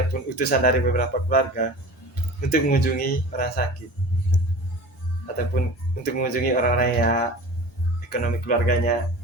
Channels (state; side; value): normal; both; correlation 0.37